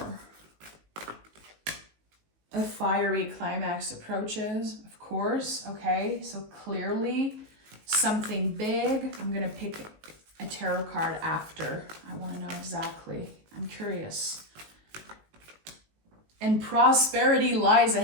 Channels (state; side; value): late; left; 19 ms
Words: A fiery climax approaches, of course. Okay, so clearly something big. I'm going to pick a tarot card after. I want to know exactly. I'm curious. And prosperity lies